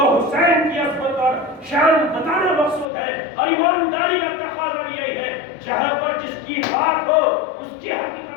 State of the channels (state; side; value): drops out; right; at 2.9 s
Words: حسین کی عظمت اور شان بتانا مقصود ہے، اور ایمانداری کا تقاضا یہی ہے جہاں پر جس کی بات ہو اس کی